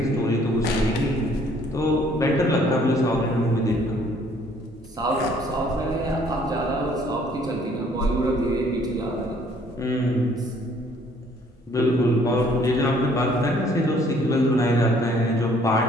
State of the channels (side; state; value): both; normal; correlation 0.61